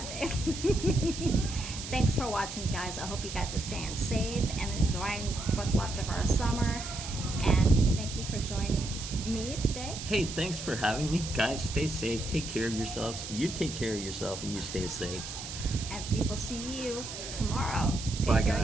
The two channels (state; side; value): noise; right; hiss, 9 dB below the sound